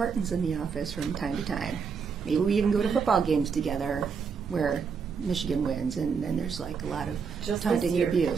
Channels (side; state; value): left; quieter; 5.9 dB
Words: in the office from time to time. Maybe we even go to football games together where Michigan wins, and then there's like a lot of taunting and